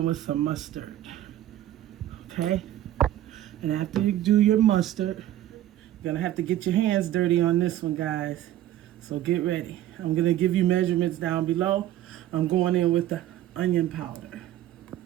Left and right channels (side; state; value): left; quieter; 13.0 dB